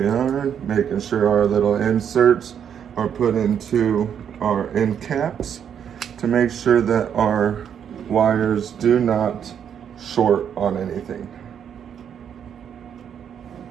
we are, making sure our little inserts are put into our end caps to make sure that our wires do not short on anything.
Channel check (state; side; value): quieter; left; 8.4 dB